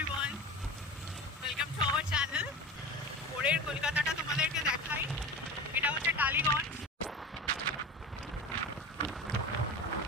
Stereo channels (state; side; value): normal; both; correlation 0.30